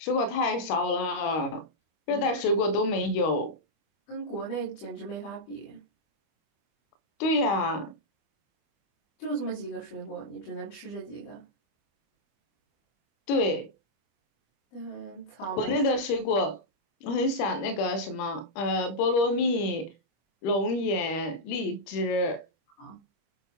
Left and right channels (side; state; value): right; late; 25 ms